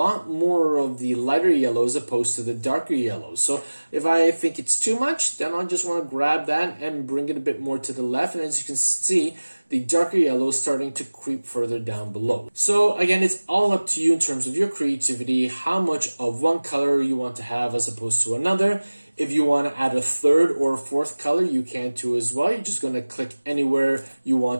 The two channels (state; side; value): inverted; both; correlation -1.00